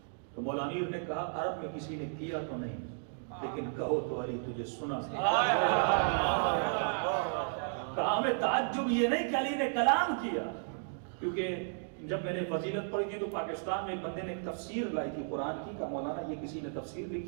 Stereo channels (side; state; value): left; silent; digital silence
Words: تو مولا امیر نے کہا عرب میں کسی نے کیا تو نہیں، لیکن کہو تو علی تجھے سنا۔ کہا ہمیں تعجب یہ نہیں کہ علی نے کلام کیا، کیونکہ جب میں نے فضیلت پڑھی تھی تو پاکستان میں ایک بندے نے تفسیر لائی تھی قرآن کی، کہ مولانا یہ کسی نے تفسیر